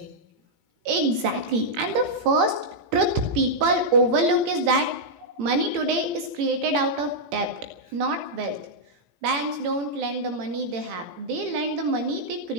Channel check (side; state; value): left; late; 18 ms